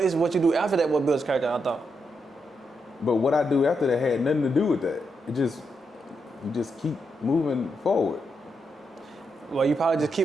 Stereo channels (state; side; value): normal; both; correlation 0.82